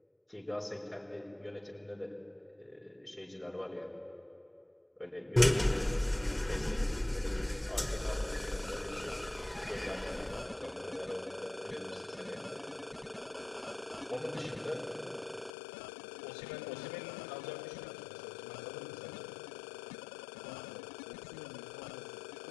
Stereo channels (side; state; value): right; drops out; at 15.5 s